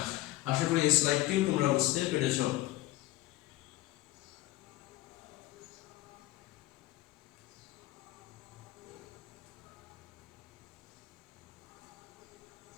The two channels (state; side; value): quieter; right; 17.2 dB